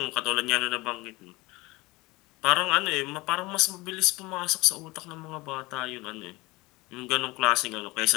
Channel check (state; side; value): quieter; right; 22.2 dB